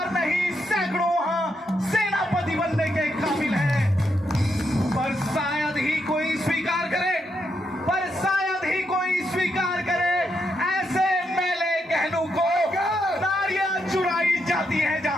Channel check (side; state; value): both; normal; correlation 0.80